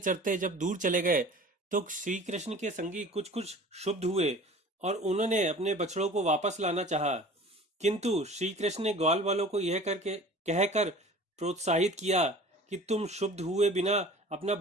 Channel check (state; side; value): normal; both; correlation 0.43